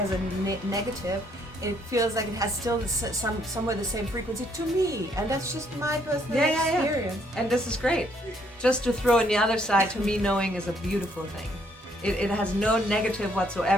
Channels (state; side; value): normal; both; correlation 0.69